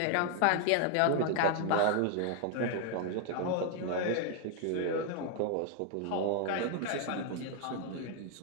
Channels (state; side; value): different; both; correlation 0.00